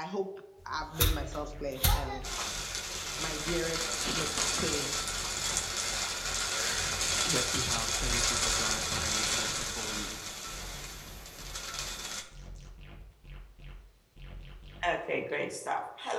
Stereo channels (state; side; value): identical; both; correlation 1.00